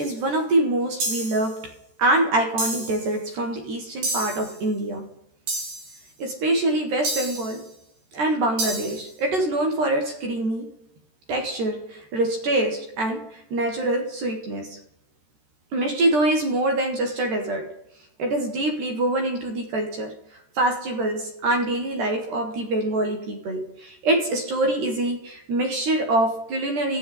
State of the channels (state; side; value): late; left; 13 ms